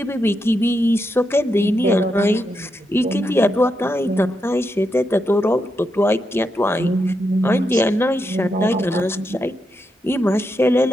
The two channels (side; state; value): both; normal; correlation 0.84